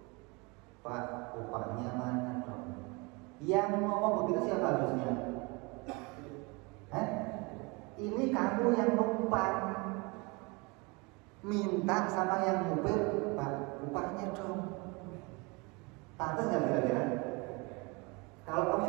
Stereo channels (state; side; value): quieter; left; 28.1 dB